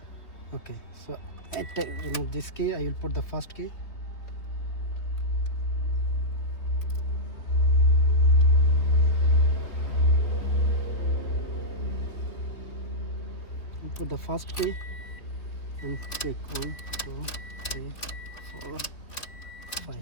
Okay, so at remove this key, I will put the first key. Put the first key and click 1, 2, 3, 4,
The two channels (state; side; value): late; right; 3.7 ms